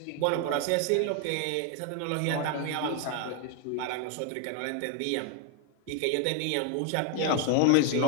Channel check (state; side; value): different; both; correlation 0.00